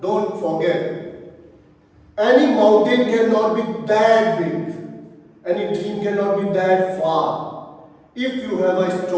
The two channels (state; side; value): identical; both; correlation 1.00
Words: forget, any mountain cannot be that big, any dream cannot be that far. If you have a